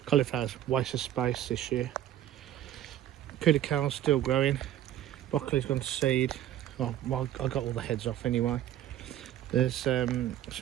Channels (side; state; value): left; quieter; 12.0 dB